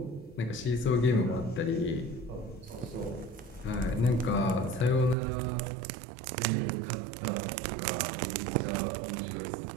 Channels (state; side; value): drops out; left; at 5.2 s